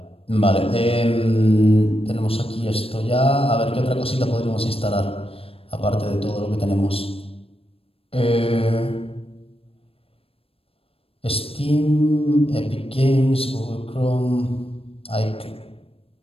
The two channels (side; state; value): right; late; 0.28 ms